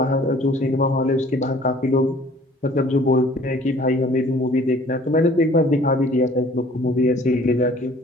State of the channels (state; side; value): normal; both; correlation 0.53